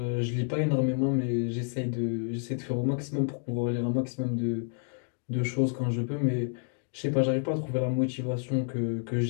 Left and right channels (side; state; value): right; silent; 58 dB below the other